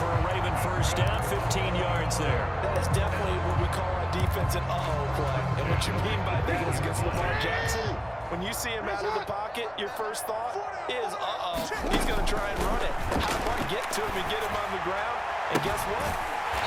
a Raven first down, 15 yards there. That is definitely what we call our defense an uh-oh play. And what you mean by that is against Lamar Jackson, when you see him out of the pocket, your first thought is, uh-oh, he's going to try and run it. How do I get to him and get him on the ground? And guess what?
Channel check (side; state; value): both; identical; correlation 1.00